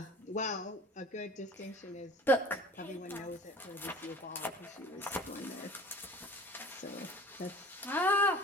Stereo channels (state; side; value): normal; both; correlation 0.43